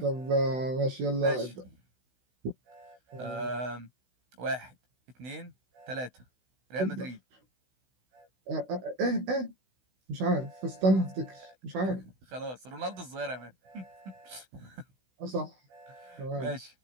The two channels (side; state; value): left; late; 16 ms